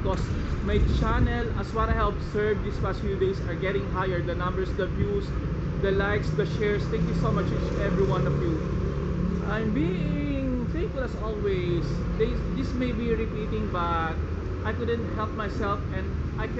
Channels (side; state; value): both; identical; correlation 1.00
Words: my channel, as what I have observed these past few days, are getting higher. The numbers, the views, the likes, the shares. Thank you so much each every one of you. I'm being thankful as always. This may be repeating, but I couldn't help myself and I